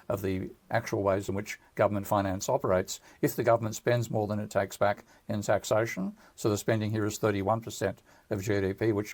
of the actual ways in which government finance operates. If the government spends more than it takes back in taxation, so the spending here is 31% of GDP,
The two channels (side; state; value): both; identical; correlation 1.00